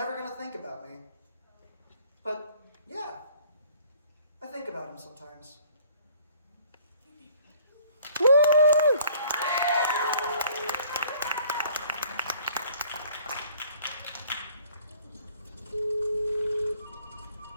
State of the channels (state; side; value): inverted; both; correlation -0.55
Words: going to think about me. But yeah, I think about him sometimes. Woo!